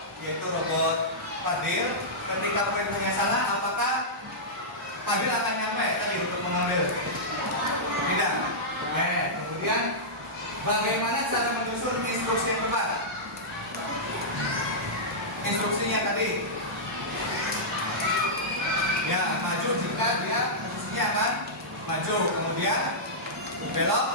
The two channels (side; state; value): both; normal; correlation -0.13